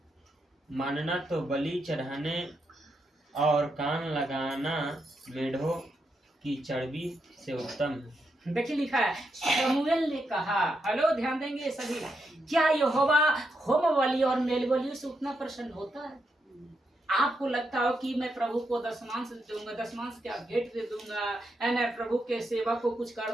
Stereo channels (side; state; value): both; normal; correlation 0.82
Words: मानना तो बलि चढ़ाने और कान लगाना मेढ़ों की चर्बी से उत्तम है। देखिए लिखा है शमूएल ने कहा, हेलो ध्यान देंगे सभी, क्या यहोवा होम बलि और मेल बलियों से उतना प्रसन्न होता है? आपको लगता हो कि मैं प्रभु को दशमांश दूंगा, दशमांश क्या भेंट दे दूंगा, है ना, प्रभु के सेवा को कुछ